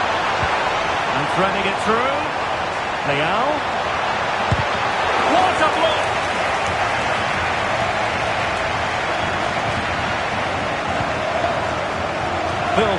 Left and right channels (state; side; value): identical; both; correlation 1.00